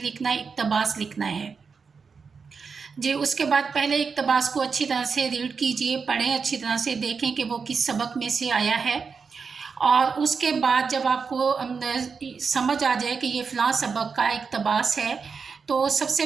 लिखना, इक़्तिबास लिखना है जी। उसके बाद पहले इक़्तिबास को अच्छी तरह से रीड कीजिए, पढ़ें, अच्छी तरह से देखें कि वो किस सबक में से आया है। और उसके बाद जब आपको समझ आ जाए कि ये फ़लाँ सबक का इक़्तिबास है तो सबसे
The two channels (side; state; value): left; quieter; 5.4 dB